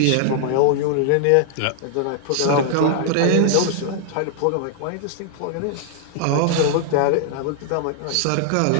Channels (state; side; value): different; both; correlation -0.01